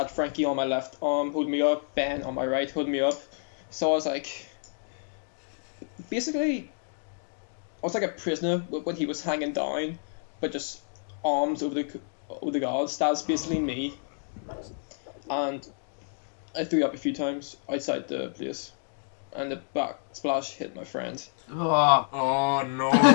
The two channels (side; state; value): right; silent; digital silence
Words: Frankie on my left arm holding me up, Ben on my right holding me up. So I was like, basically, I was like a prisoner when he was hanging down, but just arms over the guards. That's basically me. And I threw up a few times outside the place, and the back splash hit my friend. Oh. Oh no!